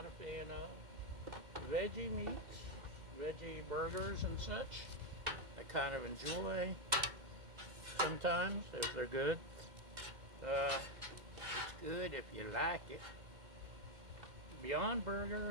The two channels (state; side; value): late; left; 2.1 ms